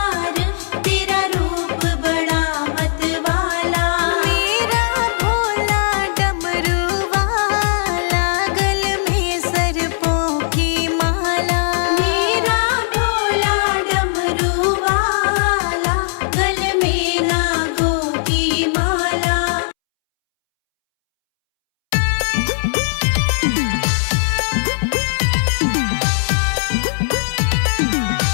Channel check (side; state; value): right; silent; 66 dB below the other